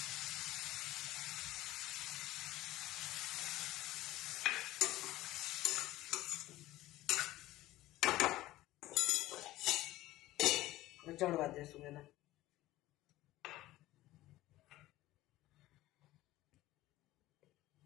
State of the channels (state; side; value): quieter; right; 16.6 dB